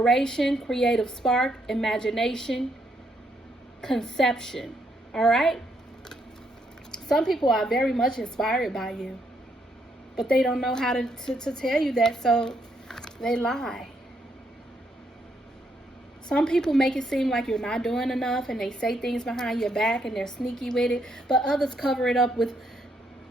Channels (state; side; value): normal; both; correlation 0.75